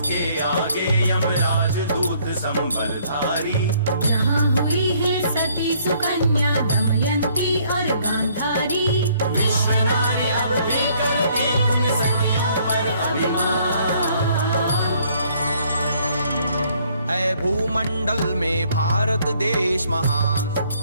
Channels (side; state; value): both; inverted; correlation -0.64